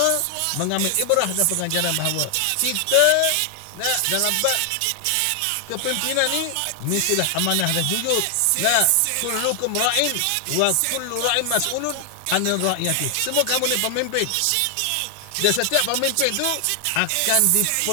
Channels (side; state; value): both; different; correlation 0.00